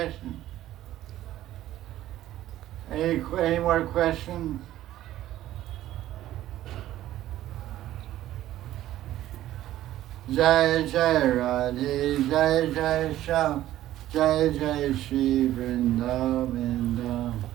Any more questions? Jaya Jaya Radhe, Jaya Jaya Sham, Jaya Jaya Sri Vrindavan,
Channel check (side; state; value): left; quieter; 13.8 dB